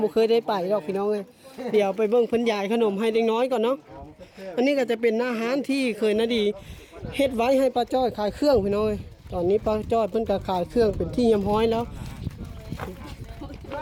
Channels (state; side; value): identical; both; correlation 1.00